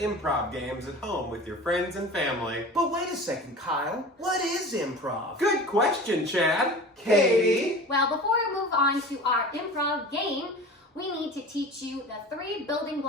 games at home with your friends and family. But wait a second, Kyle. What is improv? Good question, Chad. Katie? Well, before we move on to our improv game, we need to teach you the 3 building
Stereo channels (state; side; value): normal; both; correlation 0.37